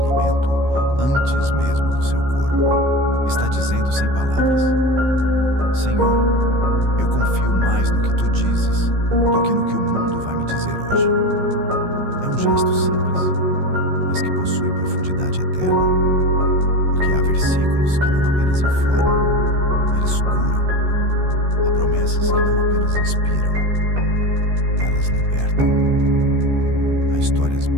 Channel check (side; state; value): left; late; 15 ms